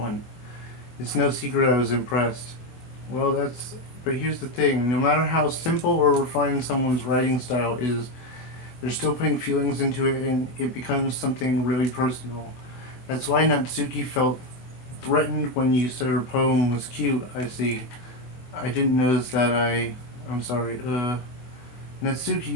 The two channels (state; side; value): late; right; 24 ms